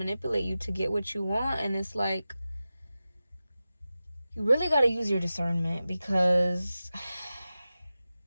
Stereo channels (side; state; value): both; inverted; correlation -0.94